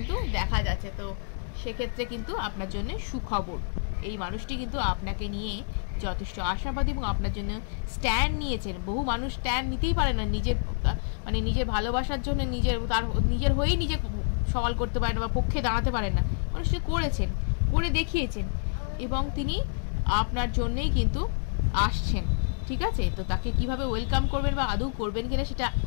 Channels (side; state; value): right; silent; digital silence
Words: দেখা যাচ্ছে। তো সেক্ষেত্রে কিন্তু আপনার জন্য সুখবর, এই মানুষটি কিন্তু আপনাকে নিয়ে যথেষ্ট আশাবাদী এবং আপনার জন্য স্ট্যান্ড নিয়েছেন। বহু মানুষ স্ট্যান্ড নিতেই পারে না নিজের, মানে নিজের ভালোবাসার জন্য, নিজের হয়েই নিজে সওয়াল করতে পারেন বা পক্ষে দাঁড়াতে পারেন না। মানুষটি করেছেন, করে দেখিয়েছেন এবং তিনি আপনার জন্যেই কিন্তু আসছেন। ঠিক আছে, তো তাকে কিভাবে ওয়েলকাম করবেন বা আদৌ করবেন কিনা সেটা